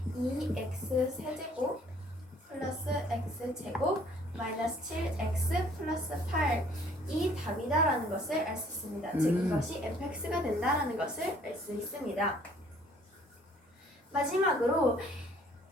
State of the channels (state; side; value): normal; both; correlation 0.59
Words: 2x 세제곱 플러스 x제곱 마이너스 7x 플러스 8 이 답이다라는 것을 알 수 있습니다. 즉 이것이 fx가 된다라는 것을 알 수 있습니다. 마지막으로